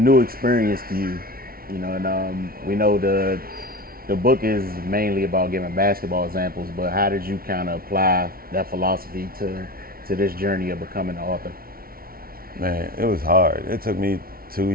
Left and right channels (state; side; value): late; left; 0.43 ms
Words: experience to you, you know, and we know the book is mainly about giving basketball examples, but how did you kind of apply that philosophy to this journey of becoming an author? Man, it was hard. It took me 2